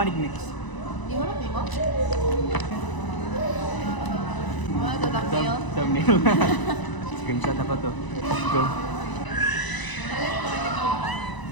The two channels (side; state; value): right; late; 1.0 ms